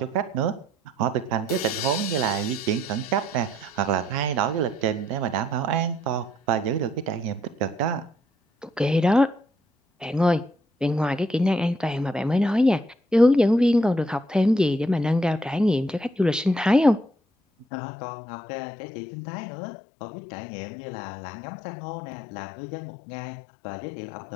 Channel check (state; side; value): drops out; right; at 17.7 s